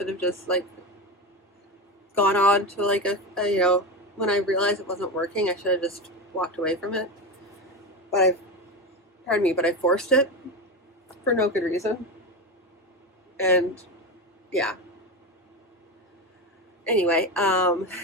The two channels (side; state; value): both; normal; correlation 0.19